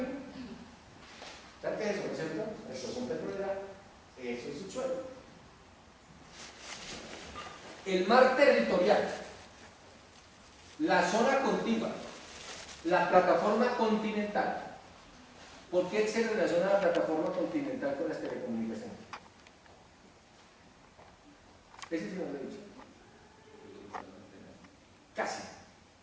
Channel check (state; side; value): identical; both; correlation 1.00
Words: ¿Sabes qué es eso? ¿No es cierto? La explosión petrolera, eso es subsuelo. El mar territorial, la zona contigua, la plataforma continental. ¿Por qué se relaciona la plataforma continental con las telecomunicaciones? Ese sí no lo he dicho. Casi.